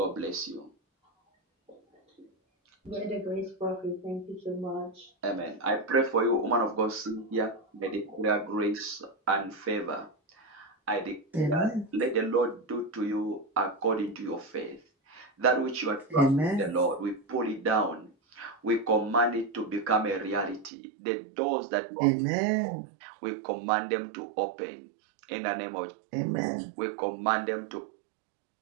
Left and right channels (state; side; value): drops out; left; at 20.7 s